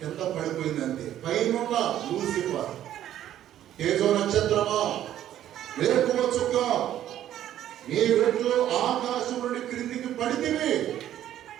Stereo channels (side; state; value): left; quieter; 11.8 dB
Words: కింద పడిపోయిందంటే, పైన లూసిఫర్, తేజో నక్షత్రమా, వేకువ చుక్క, నీ వెట్లు ఆకాశం నుండి క్రిందికి పడితివి,